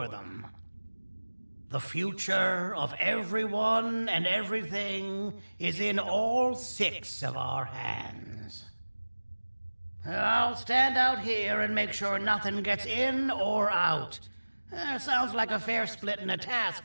them. The future of everyone and everything is in all 6 of our hands. I'll stand out here and make sure nothing gets in or out. Sounds like a fair splitting of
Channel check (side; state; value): both; inverted; correlation -1.00